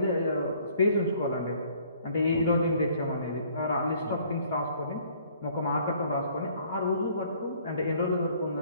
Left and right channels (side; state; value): both; inverted; correlation -0.59